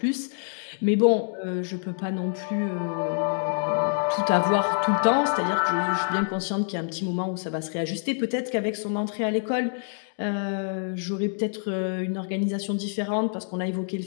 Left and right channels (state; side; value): silent; right; digital silence